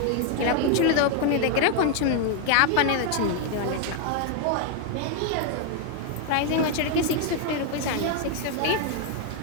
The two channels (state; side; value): different; both; correlation 0.00